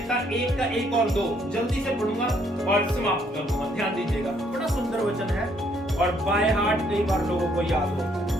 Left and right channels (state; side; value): normal; both; correlation 0.68